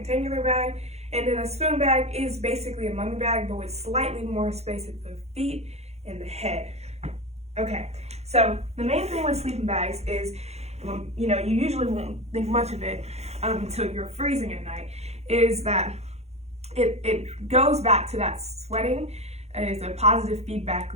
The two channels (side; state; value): left; late; 0.31 ms